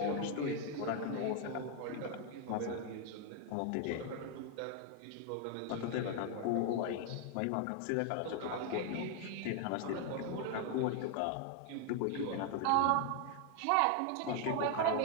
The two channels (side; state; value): both; different; correlation 0.01